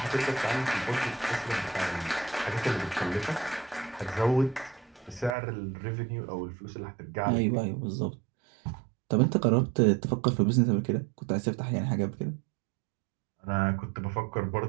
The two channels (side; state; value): left; drops out; at 5.4 s